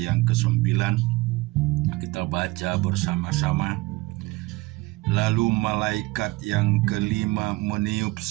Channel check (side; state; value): left; quieter; 21.0 dB